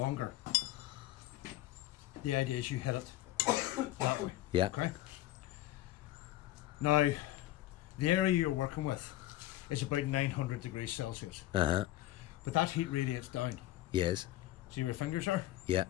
the idea is you hit it that way. Yeah. Okay. Now, the area you're working with is about 900 degrees Celsius, Uh-huh. but that heat radiates down. Yes. See where your fingers are? Yeah.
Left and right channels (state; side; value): quieter; right; 15.3 dB